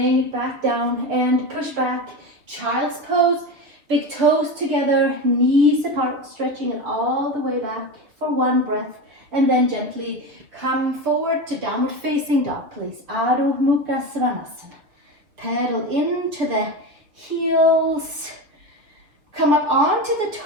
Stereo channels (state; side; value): late; left; 6.6 ms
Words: it back down and push back. Child's pose. Big toes together, knees apart, stretching it all the way back for one breath. And then gently come forward to downward facing dog, please. Adho Mukha Svanasana. Pedal into the heels. Come up onto the